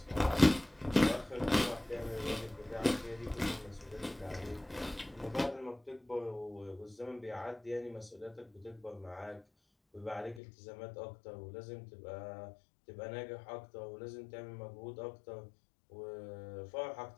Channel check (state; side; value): drops out; right; at 10.4 s